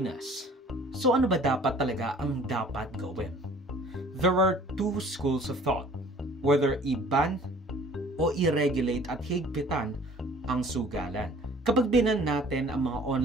So ano ba dapat talaga ang dapat gawin? There are two schools of thought, whether i-ban o i-regulate at higpitan ang sugalan. Kapag binan natin ang mga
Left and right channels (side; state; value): both; normal; correlation 0.51